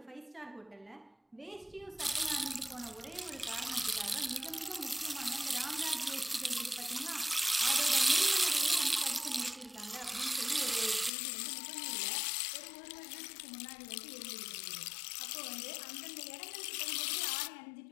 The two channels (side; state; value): right; drops out; at 11.1 s